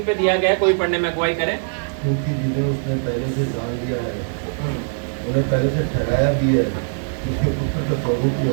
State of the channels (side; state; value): left; silent; digital silence